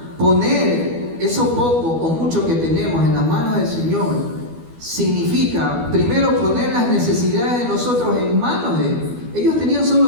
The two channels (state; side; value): late; left; 12 ms